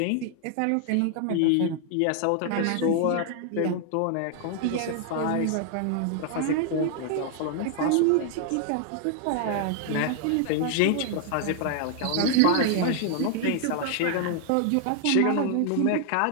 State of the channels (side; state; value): both; different; correlation 0.00